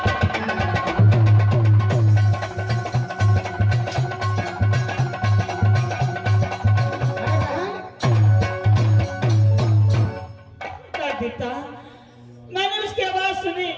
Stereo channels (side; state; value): both; identical; correlation 1.00